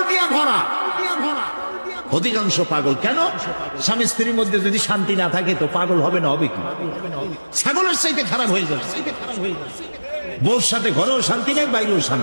দিয়ে ভরা, অধিকাংশ পাগল। কেন? স্বামী স্ত্রীর মধ্যে যদি শান্তি না থাকে তো পাগল হবে না, হবে কি? ছাগলের চাইতে খারাপ হয়ে যাবে। বউর সাথে ঘরেও শান্তি নেই, বাইরেও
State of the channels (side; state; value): both; inverted; correlation -1.00